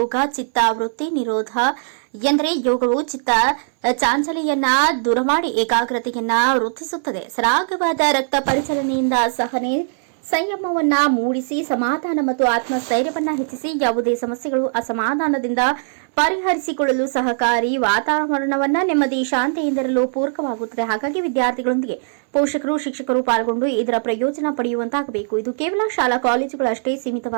ಚಿತ್ತ ವೃತ್ತಿ ನಿರೋಧ ಎಂದರೆ ಯೋಗವು ಚಿತ್ತ ಚಾಂಚಲ್ಯವನ್ನ ದೂರ ಮಾಡಿ ಏಕಾಗ್ರತೆಯನ್ನ ವೃದ್ಧಿಸುತ್ತದೆ. ಸರಾಗವಾದ ರಕ್ತ ಪರಿಚಲನೆಯಿಂದ ಸಹನೆ ಸಂಯಮವನ್ನ ಮೂಡಿಸಿ ಸಮಾಧಾನ ಮತ್ತು ಆತ್ಮಸ್ಥೈರ್ಯವನ್ನ ಹೆಚ್ಚಿಸಿ ಯಾವುದೇ ಸಮಸ್ಯೆಗಳು ಅಸಮಾಧಾನದಿಂದ ಪರಿಹರಿಸಿಕೊಳ್ಳಲು ಸಹಕಾರಿ ವಾತಾವರಣವನ್ನ ನೆಮ್ಮದಿ ಶಾಂತಿಯಿಂದಿರಲು ಪೂರಕವಾಗುತ್ತದೆ. ಹಾಗಾಗಿ ವಿದ್ಯಾರ್ಥಿಗಳೊಂದಿಗೆ ಪೋಷಕರು, ಶಿಕ್ಷಕರು ಪಾಲ್ಗೊಂಡು ಇದರ ಪ್ರಯೋಜನ ಪಡೆಯುವಂತಾಗಬೇಕು. ಇದು ಕೇವಲ ಶಾಲಾ ಕಾಲೇಜುಗಳಷ್ಟೇ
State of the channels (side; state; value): left; silent; 65 dB below the other